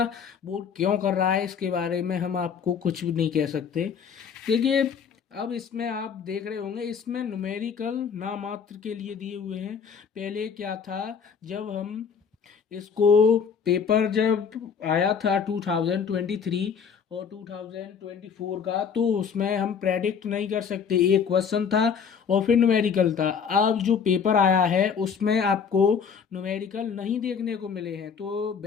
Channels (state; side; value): quieter; right; 6.6 dB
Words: बोर्ड क्यों कर रहा है इसके बारे में हम आपको कुछ भी नहीं कह सकते। देखिए, अब इसमें आप देख रहे होंगे, इसमें न्यूमेरिकल नामात्र के लिए दिए हुए हैं। पहले क्या था, जब हम इसको पेपर जब आया था 2023 और 2024 का, तो उसमें हम प्रेडिक्ट नहीं कर सकते। एक क्वेश्चन था और फिर न्यूमेरिकल था। अब जो पेपर आया है उसमें आपको न्यूमेरिकल नहीं देखने को मिले हैं। तो